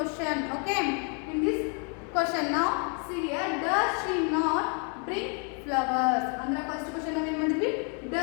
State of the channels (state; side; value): quieter; right; 38.7 dB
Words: Okay, in this question now see here, does she not bring flowers? ಅಂದ್ರೆ ಫಸ್ಟ್ ಕ್ವಶನ್ ನಾವು ಏನು ಮಾಡಿದ್ವಿ,